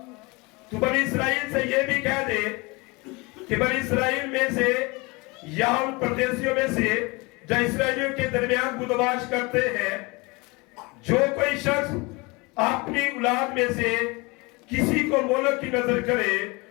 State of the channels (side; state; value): right; quieter; 26.1 dB